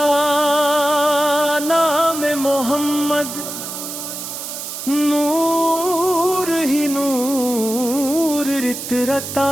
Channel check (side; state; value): right; noise; hiss, 8 dB below the sound